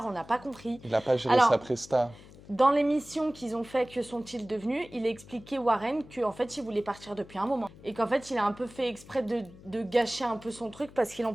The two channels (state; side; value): noise; left; hum, 20 dB below the sound